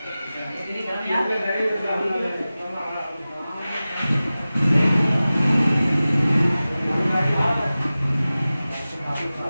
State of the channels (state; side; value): inverted; both; correlation -0.96